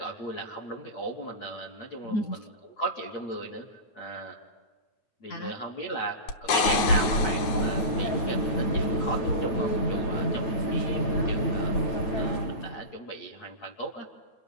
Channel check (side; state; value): right; late; 9.6 ms